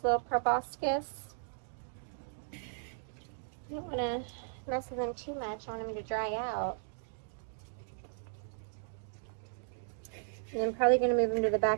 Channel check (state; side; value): silent; left; digital silence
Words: little proboscis. I don't want to mess with him too much. I want him to dry out. And I'm probably going to move him to the